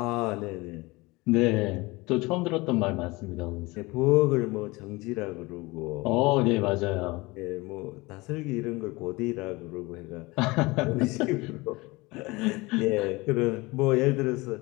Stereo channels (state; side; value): quieter; right; 22.9 dB